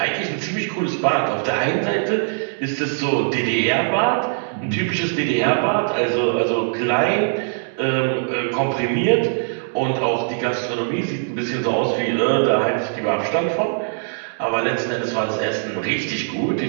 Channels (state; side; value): silent; left; digital silence